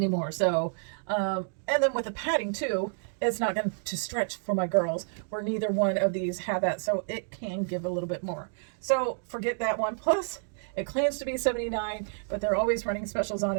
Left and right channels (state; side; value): silent; left; digital silence